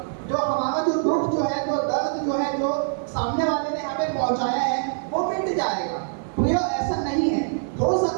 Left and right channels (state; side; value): silent; left; 58 dB below the other